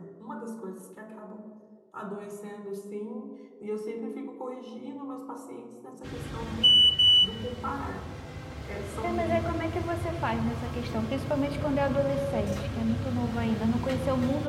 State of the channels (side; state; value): both; identical; correlation 1.00